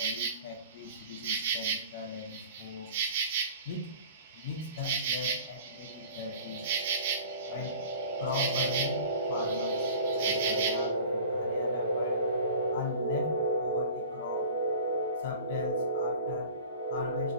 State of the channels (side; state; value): both; inverted; correlation -0.42